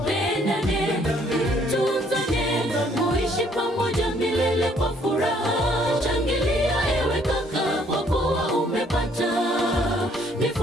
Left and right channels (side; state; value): both; normal; correlation 0.64